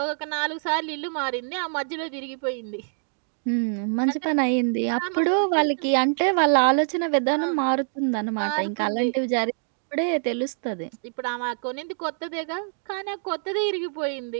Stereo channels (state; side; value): silent; left; digital silence